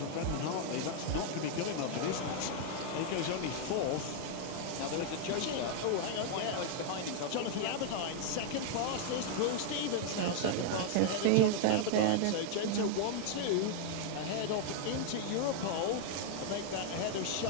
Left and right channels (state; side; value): different; both; correlation 0.00